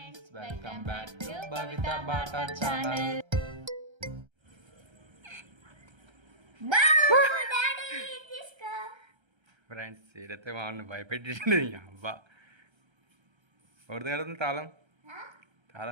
welcome back to Bhavita Bata channel. Friends ఏదైతే వాళ్ళని భయపెట్టింది అబ్బా ఎవరిది కడుతుంది తాళం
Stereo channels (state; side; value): late; left; 1.3 ms